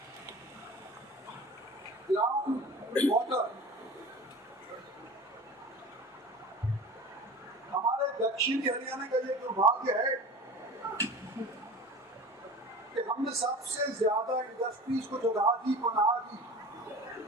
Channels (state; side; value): normal; both; correlation 0.37